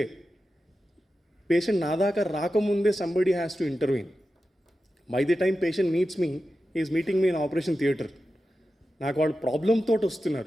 పేషెంట్ నా దాకా రాకముందే somebody has to intervene. By the time patient meets me, is meeting me in operation theatre. నాకు వాళ్ళు ప్రాబ్లంతో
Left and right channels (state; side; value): normal; both; correlation 0.92